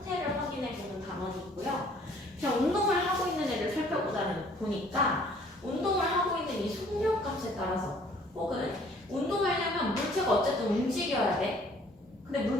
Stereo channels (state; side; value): normal; both; correlation 0.57